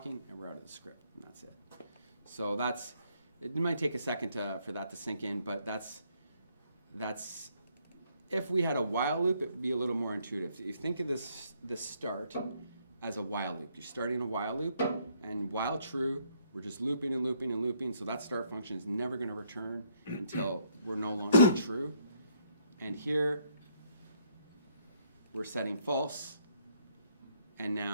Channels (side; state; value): both; inverted; correlation -0.69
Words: and we're out of the script, and that's it. So it might take a second for that to sink in, but that's if we had a while loop, it would be a little more intuitive. You think of this start as a while loop. You're starting a while loop, and while true, we're just looping and looping and looping, so that start function is never going to return until we're no longer true. And here, we're setting false, and